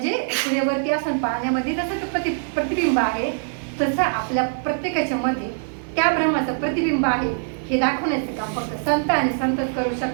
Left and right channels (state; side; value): silent; left; digital silence